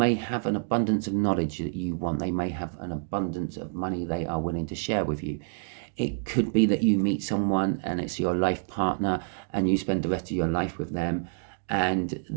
have an abundance of knowledge that you want. They may have an abundance of money they are willing to share with you. It could be that you meet someone and it's your life partner and you spend the rest of your life with them, and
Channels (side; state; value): left; silent; digital silence